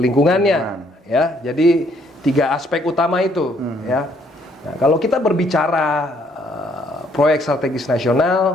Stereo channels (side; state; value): both; normal; correlation 0.66